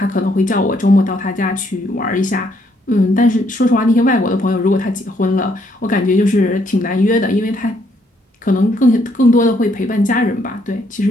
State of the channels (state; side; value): normal; both; correlation 0.71